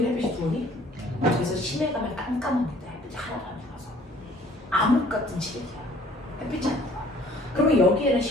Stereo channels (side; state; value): both; normal; correlation 0.56